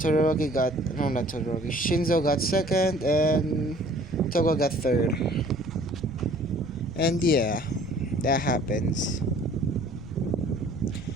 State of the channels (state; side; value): noise; right; rumble, 17 dB below the sound